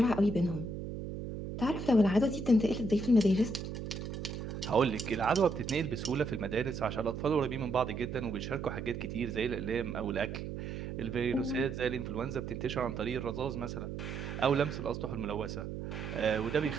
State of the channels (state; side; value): noise; right; hum, 6 dB below the sound